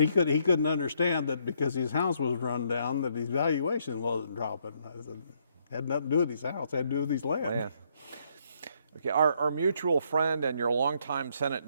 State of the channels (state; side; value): inverted; both; correlation -0.71